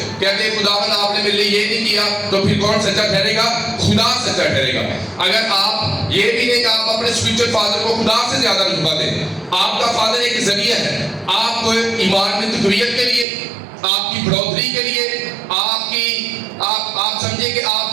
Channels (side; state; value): left; drops out; at 13.2 s